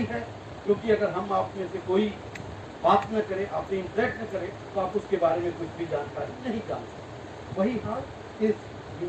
है, क्योंकि अगर हम आप में से कोई बात न करे, आपसे इंटरेक्ट न करे, तो आप उसके बारे में कुछ भी जानकारी नहीं जान सकते। वही हाल इस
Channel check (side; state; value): both; identical; correlation 1.00